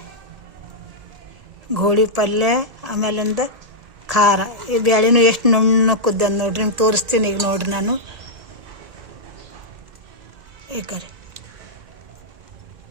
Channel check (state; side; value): late; left; 1.8 ms